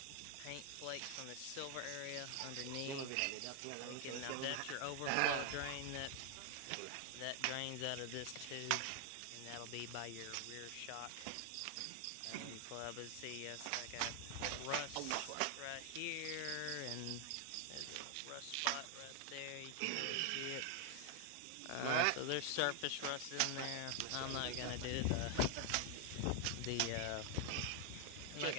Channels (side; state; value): both; different; correlation 0.00